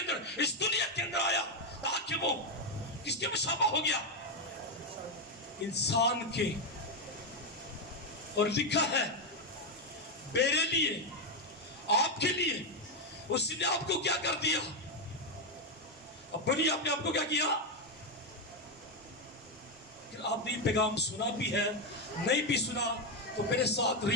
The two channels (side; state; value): both; normal; correlation 0.05